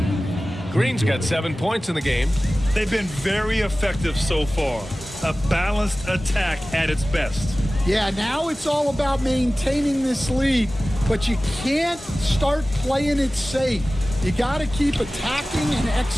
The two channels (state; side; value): normal; both; correlation 0.96